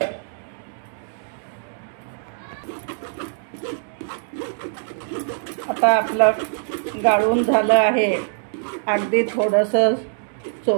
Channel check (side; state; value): left; silent; 63 dB below the other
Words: आता आपलं गाळून झालं आहे। अगदी थोडंसं